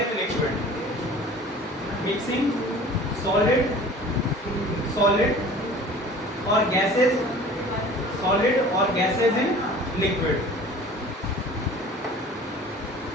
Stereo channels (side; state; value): both; normal; correlation 0.45